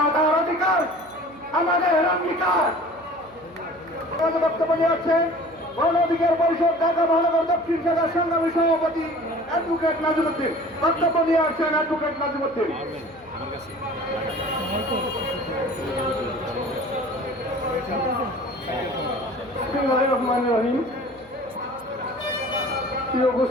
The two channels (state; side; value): noise; right; hum, 26 dB below the sound